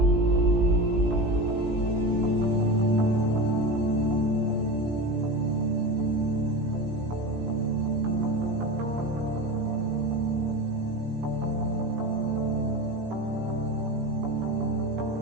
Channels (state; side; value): late; left; 17 ms